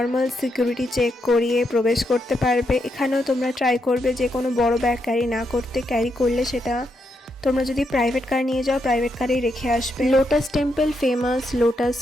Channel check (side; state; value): both; normal; correlation 0.81